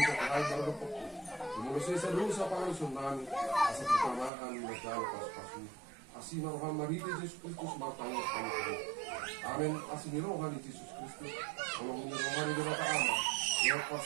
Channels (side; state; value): left; drops out; at 4.3 s